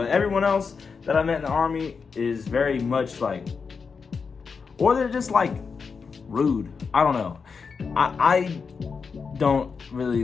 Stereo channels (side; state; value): right; quieter; 5.4 dB